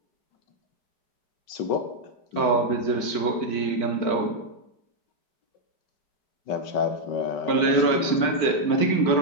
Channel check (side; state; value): right; late; 4.5 ms